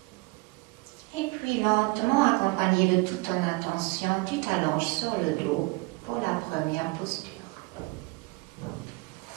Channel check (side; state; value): left; quieter; 25.4 dB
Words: Et puis puis lentement, accompagné de toute ton attention, tu t'allonges sur le dos pour la première posture.